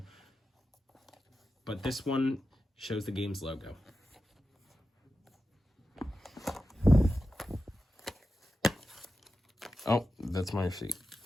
but this one shows the game's logo. Oh, that's my receipt.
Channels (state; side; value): normal; both; correlation 0.91